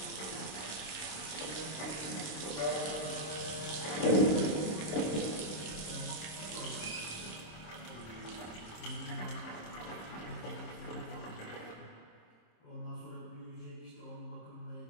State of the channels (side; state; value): right; late; 26 ms